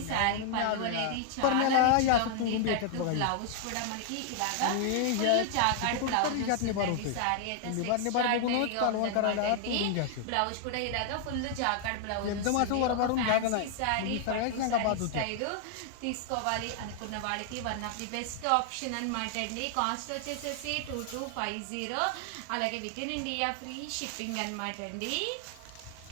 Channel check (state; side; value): different; both; correlation 0.00